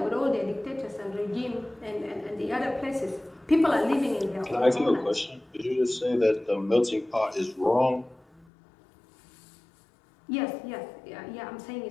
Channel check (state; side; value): drops out; right; at 8.5 s